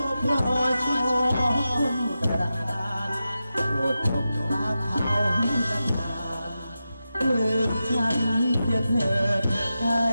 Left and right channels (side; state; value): both; inverted; correlation -0.91